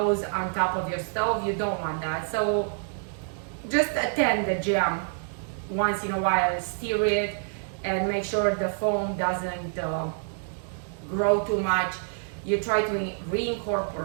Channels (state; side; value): silent; left; digital silence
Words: on top of your stove. You don't want that. So just attend the jam once in a while, stir it, and make sure the foam doesn't grow too much. You try to